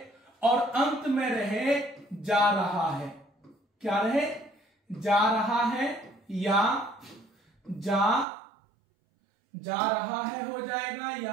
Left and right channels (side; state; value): left; drops out; at 8.2 s